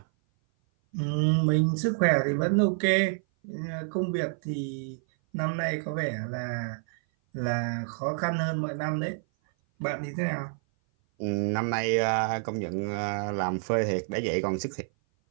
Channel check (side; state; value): left; silent; 56 dB below the other